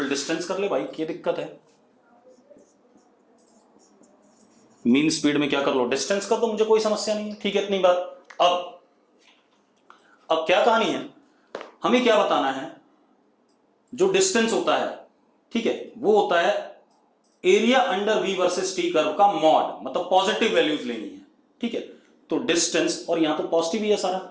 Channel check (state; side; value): identical; both; correlation 1.00